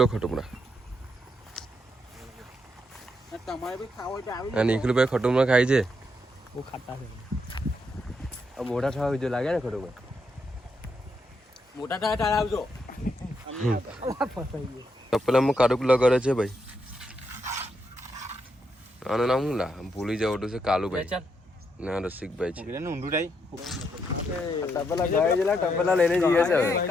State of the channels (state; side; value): normal; both; correlation 0.79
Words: લો ખટોમરા. નિખિલભાઈ ખટોમરા ખાય છે. મોટા થવા બીજો લાગે ને ખટોમરા. મોટા થયા તારે આવજો. તપેલામાં કાળુક લગાડે છે ભાઈ. આનું નામ શું લા ભૂલી જવું છે. કાલુભાઈ ના રસિકભાઈ છે. તપેલા લઈને જઈએ છે.